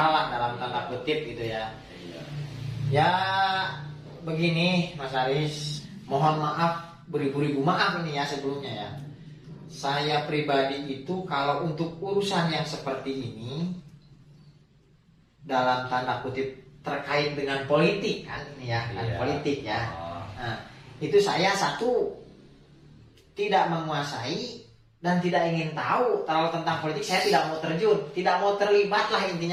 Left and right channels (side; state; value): both; identical; correlation 1.00